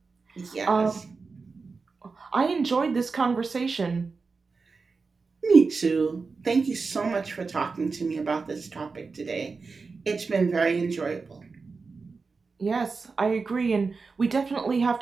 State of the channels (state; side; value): quieter; left; 4.5 dB